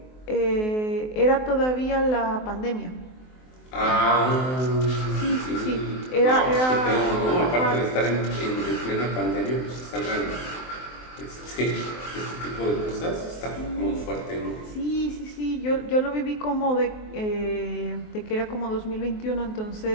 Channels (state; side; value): late; right; 23 ms